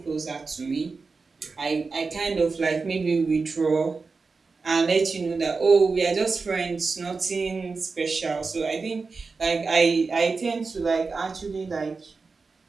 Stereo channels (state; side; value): quieter; left; 4.4 dB